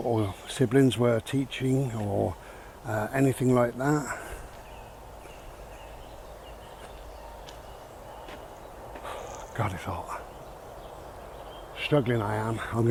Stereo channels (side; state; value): both; identical; correlation 1.00